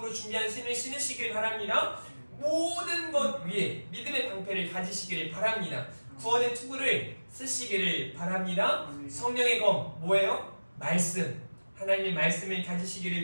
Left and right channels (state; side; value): inverted; both; correlation -1.00